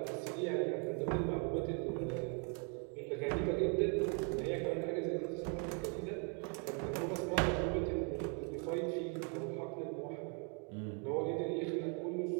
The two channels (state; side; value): quieter; left; 38.3 dB